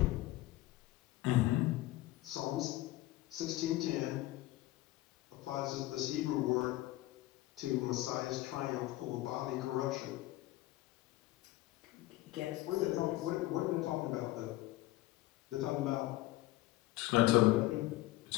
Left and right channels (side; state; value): right; quieter; 17.2 dB